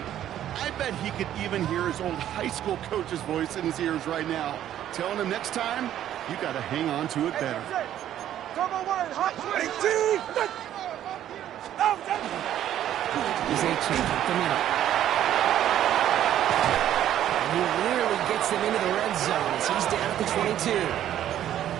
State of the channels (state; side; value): quieter; left; 11.5 dB